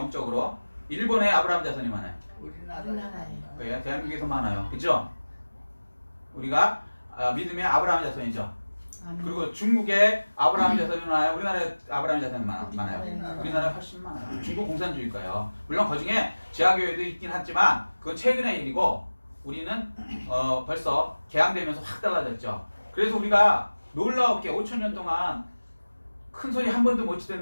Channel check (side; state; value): both; inverted; correlation -1.00